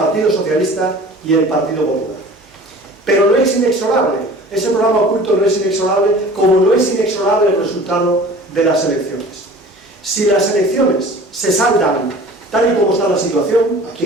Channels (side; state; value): both; normal; correlation 0.44